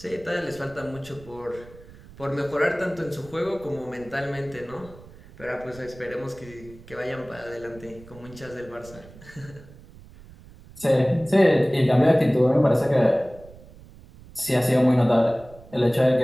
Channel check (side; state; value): right; noise; rumble, 20 dB below the sound